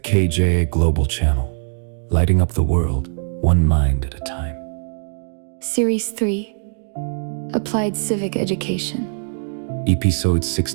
Global Channel, lighting up the world, one mind at a time. Series 3, Applied Civic Education. Episode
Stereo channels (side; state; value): left; silent; digital silence